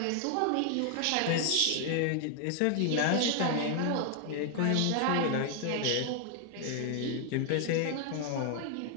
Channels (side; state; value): both; different; correlation 0.00